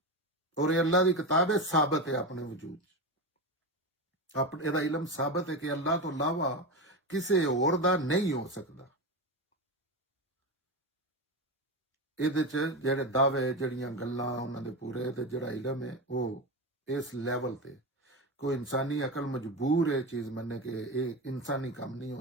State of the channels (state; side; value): normal; both; correlation 0.19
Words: ਔਰ ਇਹ ਅੱਲਾਹ ਦੀ ਕਿਤਾਬ ਹੈ ਸਾਬਤ ਹੈ ਆਪਣੇ ਵਜੂਦ ਆਪਣੇ ਇਹਦਾ ਇਲਮ ਸਾਬਤ ਹੈ ਕਿ ਅੱਲਾਹ ਤੋਂ ਇਲਾਵਾ ਕਿਸੇ ਹੋਰ ਦਾ ਨਹੀਂ ਹੋ ਸਕਦਾ। ਇਹਦੇ ਚ ਜਿਹੜੇ ਦਾਅਵੇ ਜਿਹੜੀਆਂ ਗੱਲਾਂ ਉਹਨਾਂ ਦੇ ਪੂਰੇ ਤੇ ਜਿਹੜਾ ਇਲਮ ਹੈ ਉਹ ਇਸ ਲੈਵਲ ਤੇ कोई इंसानी अकल मजबूर है चीज मनने कि ये इंसानी काम नहीं